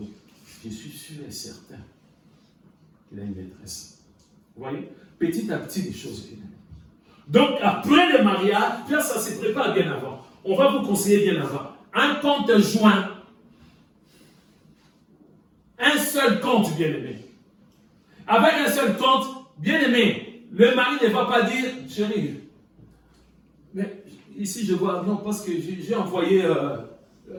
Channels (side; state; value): both; identical; correlation 1.00